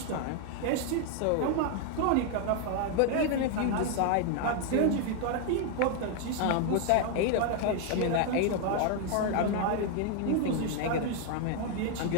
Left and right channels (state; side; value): different; both; correlation 0.00